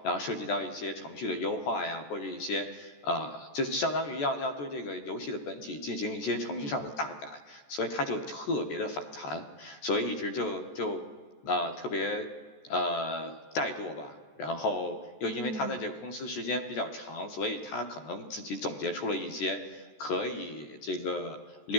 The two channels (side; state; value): right; late; 14 ms